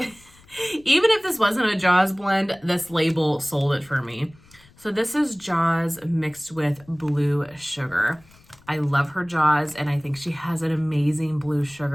if this wasn't a Jaws blend, this label sold it for me. So this is Jaws mixed with blue sugar. I love her Jaws, and I think she has an amazing blue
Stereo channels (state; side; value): noise; left; rumble, 27 dB below the sound